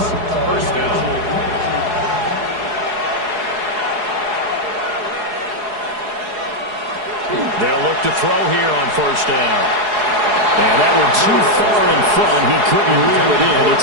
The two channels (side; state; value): left; late; 4.8 ms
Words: First down. They'll look to throw here on first down. And that one too far in front. He couldn't reel it in. It's